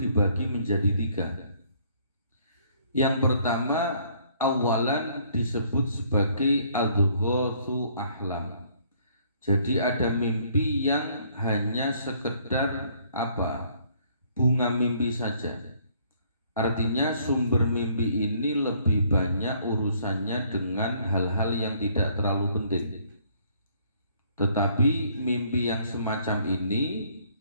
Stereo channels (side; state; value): both; inverted; correlation -0.63